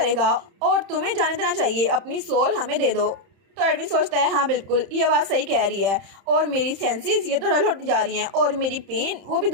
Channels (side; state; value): left; late; 31 ms